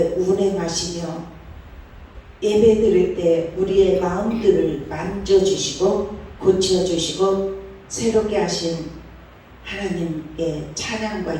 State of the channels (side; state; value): both; identical; correlation 1.00